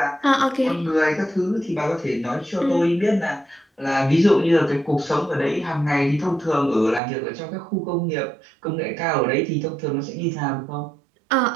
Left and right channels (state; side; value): drops out; left; at 7.0 s